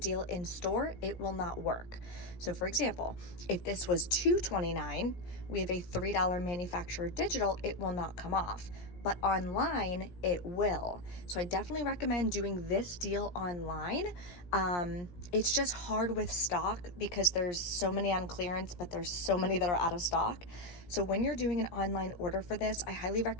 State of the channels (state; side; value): late; right; 17 ms